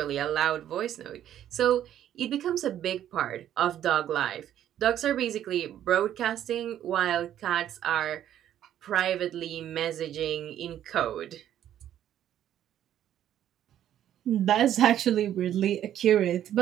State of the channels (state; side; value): quieter; left; 11.1 dB